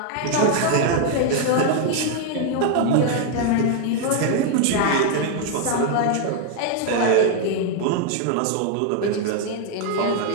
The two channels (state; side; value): different; both; correlation 0.00